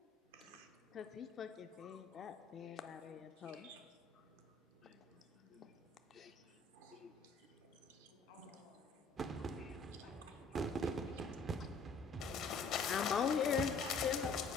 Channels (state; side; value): quieter; right; 4.0 dB